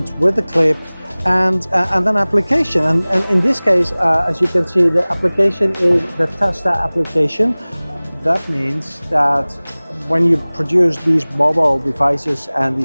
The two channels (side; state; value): both; inverted; correlation -1.00